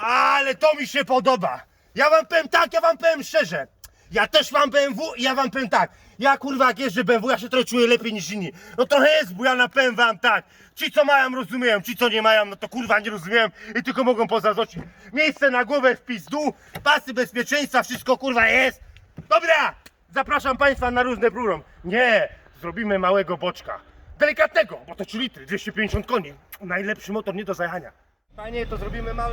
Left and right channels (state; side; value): identical; both; correlation 1.00